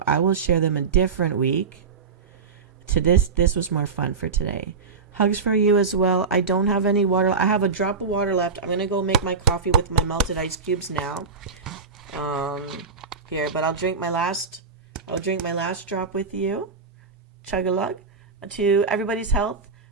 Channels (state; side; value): quieter; left; 5.1 dB